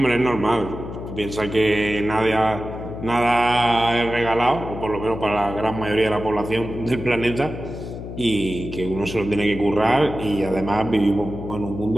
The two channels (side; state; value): left; noise; hum, 9 dB below the sound